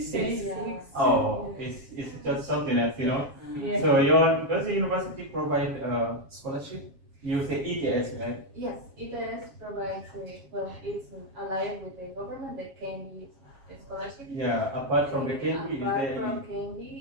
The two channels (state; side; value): late; left; 7.4 ms